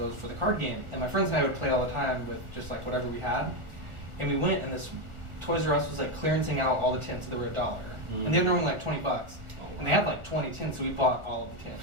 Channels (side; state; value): left; late; 1.4 ms